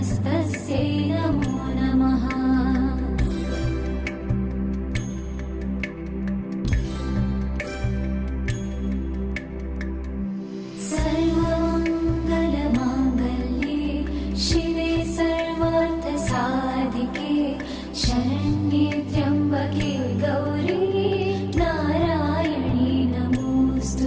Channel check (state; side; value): identical; both; correlation 1.00